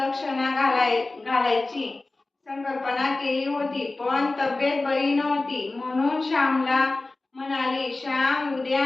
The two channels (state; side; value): quieter; right; 3.2 dB